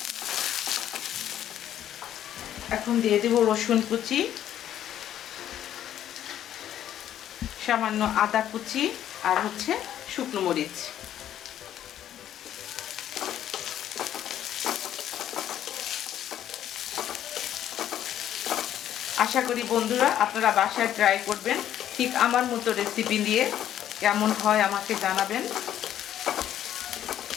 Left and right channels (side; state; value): right; quieter; 11.1 dB